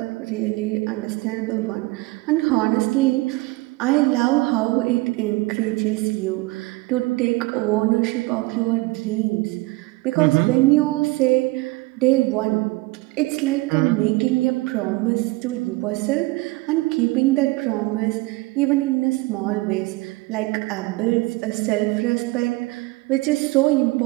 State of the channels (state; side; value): quieter; left; 22.4 dB